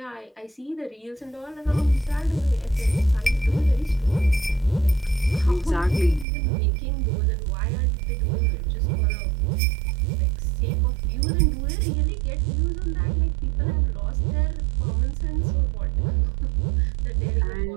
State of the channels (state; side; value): drops out; left; at 6.2 s